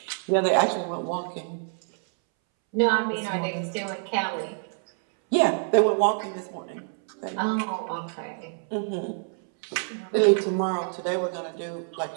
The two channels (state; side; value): silent; left; 60 dB below the other